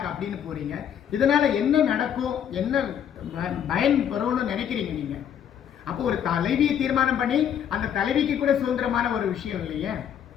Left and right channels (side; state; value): right; quieter; 9.1 dB